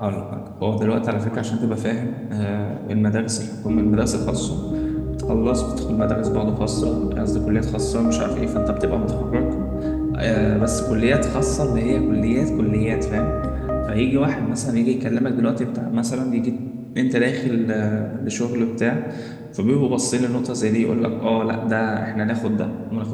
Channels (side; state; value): both; identical; correlation 1.00